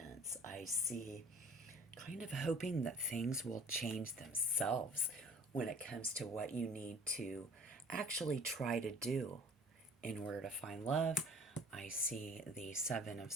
I see kind of hoping that things will change themselves when it comes to what you need to actually try to do in order to find love. I see the Seven of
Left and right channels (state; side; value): normal; both; correlation 0.49